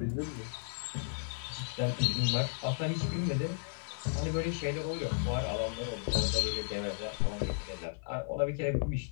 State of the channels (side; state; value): right; silent; 55 dB below the other